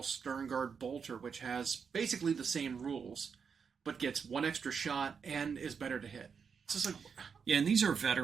Sternguard Bolter, which has basically the same rules, but gets one extra shot and is better to hit. It's just like... Yeah, and these are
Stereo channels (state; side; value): quieter; left; 6.2 dB